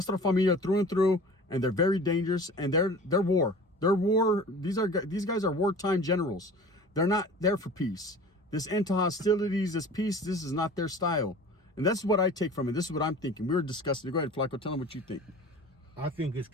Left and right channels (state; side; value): normal; both; correlation 0.41